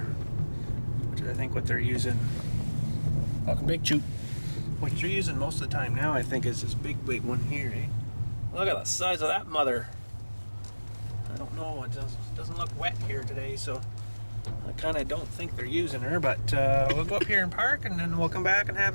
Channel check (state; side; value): inverted; both; correlation -1.00